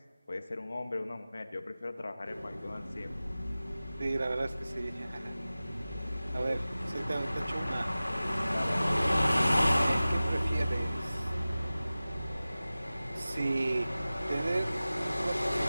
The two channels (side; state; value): both; inverted; correlation -0.97